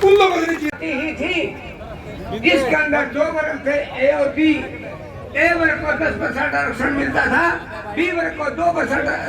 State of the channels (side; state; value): both; identical; correlation 1.00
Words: उन लोगों से नहीं जीत ही थी जिसके अंदर 2 वर्ग थे, ए और बी। ए वर्ग को 10% आरक्षण मिलता था, बी वर्ग को